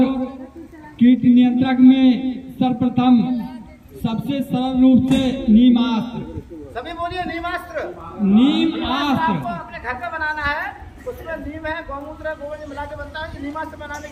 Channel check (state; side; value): identical; both; correlation 1.00